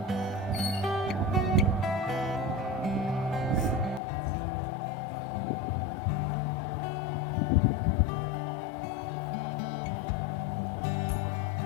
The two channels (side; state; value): right; drops out; at 4.0 s